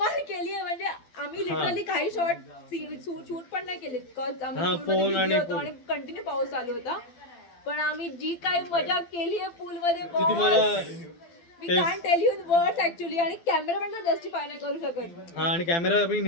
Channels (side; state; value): right; late; 12 ms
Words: म्हणजे आम्ही लिटरली काही शॉट शूट पण नाही केले. हा, फोन आणि आणि कंटिन्यू पाऊस चालू होता. पण आम्ही जी काही मजा केली आहे पूल मध्ये ती तुम्हाला मी can tell you in words actually. आणि कॅमेरा पण जस्टिफाय नाही करू शकत. हा, आणि कॅमेरा आम्ही